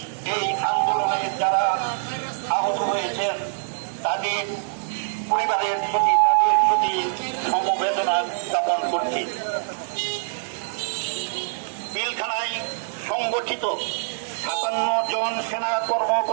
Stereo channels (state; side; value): silent; left; digital silence